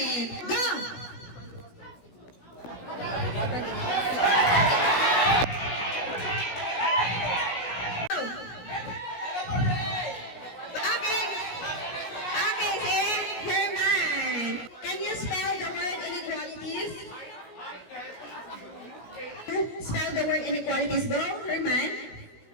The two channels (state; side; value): late; right; 16 ms